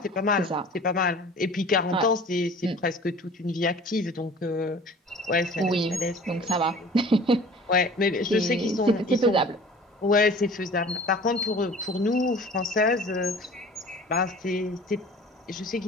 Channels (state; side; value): normal; both; correlation 0.45